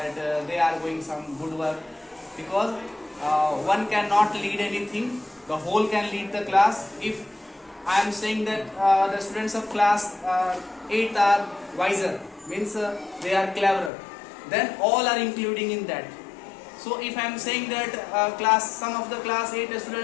they are doing some good work, because one cannot lead anything, the whole can lead the class. If I am saying that the students of class 8 are wiser, means they are cleverer, then all are including in that. So if I am saying that some of the class 8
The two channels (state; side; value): drops out; right; at 13.9 s